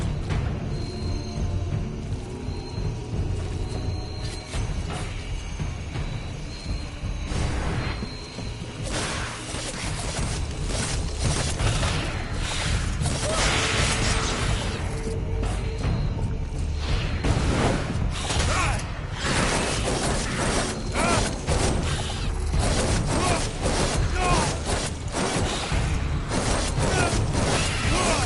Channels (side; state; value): both; identical; correlation 1.00